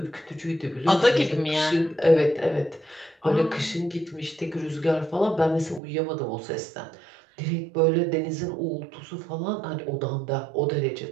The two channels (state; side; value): drops out; left; at 5.8 s